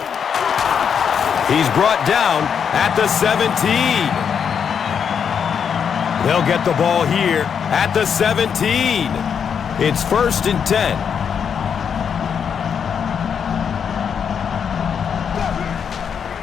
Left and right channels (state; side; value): quieter; right; 7.3 dB